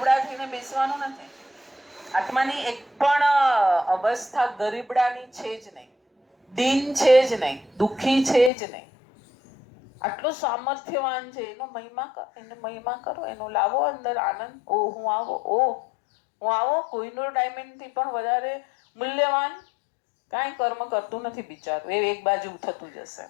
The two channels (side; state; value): right; drops out; at 8.5 s